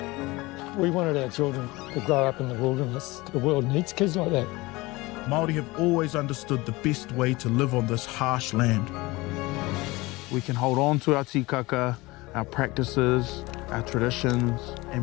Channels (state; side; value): quieter; right; 21.9 dB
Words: We wanted our children to grow up in the wilderness. The world needs kids like that. Māori have always understood the best way to live on this harsh land. We can hold on to our tikaka, our practices, our traditions,